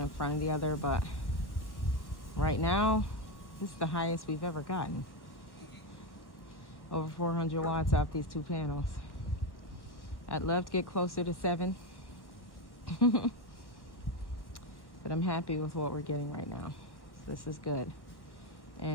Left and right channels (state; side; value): late; right; 1.0 ms